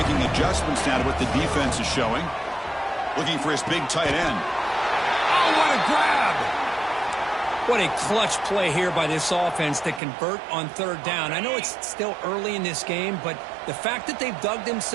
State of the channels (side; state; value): left; drops out; at 10.0 s